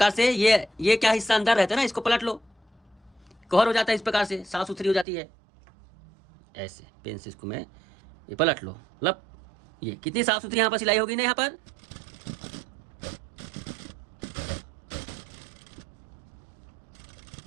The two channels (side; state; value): left; drops out; at 5.1 s